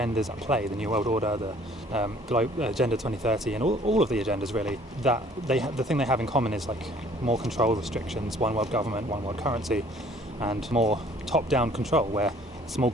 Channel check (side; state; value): both; normal; correlation 0.55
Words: at play, the New World Order, the Agenda 2030 and all of the agendas really, that the thing they have in common is like more control restrictions, one world government, one world currency, and more top-down control where a small